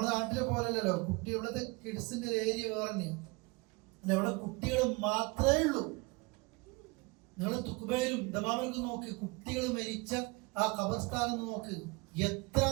നാട്ടിലെ പോലല്ലോ, കുട്ടി ഇവിടുത്തെ കിഡ്സിന്റെ ഏരിയ വേറെ തന്നെയാണ്. ഇവിടെ കുട്ടികൾ മാത്രമേ ഉള്ളൂ. നിങ്ങൾ തുക്കുബയിലും ദമാമിലും നോക്ക്, കുട്ടികൾ മരിച്ച ആ ഖബർസ്ഥാനം നോക്ക്,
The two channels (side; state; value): left; quieter; 26.4 dB